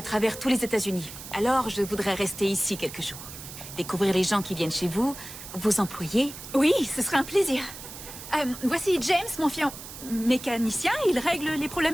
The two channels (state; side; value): noise; right; hiss, 13 dB below the sound